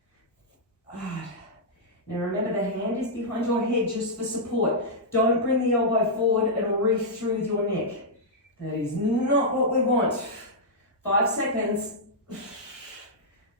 Now remember, the hand is behind your head just for support. Don't bring the elbow forward and reach through with your neck. That is not what we want. 5 seconds.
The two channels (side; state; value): both; normal; correlation -0.09